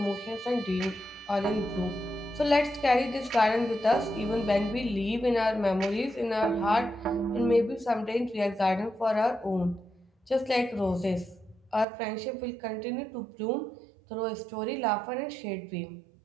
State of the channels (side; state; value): left; drops out; at 11.9 s